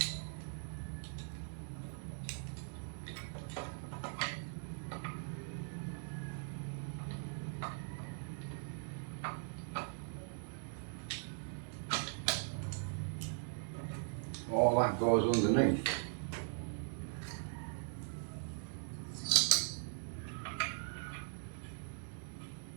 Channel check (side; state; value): left; silent; digital silence